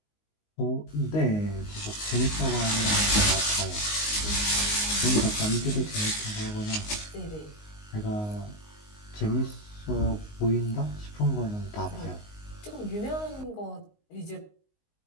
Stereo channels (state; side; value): late; right; 19 ms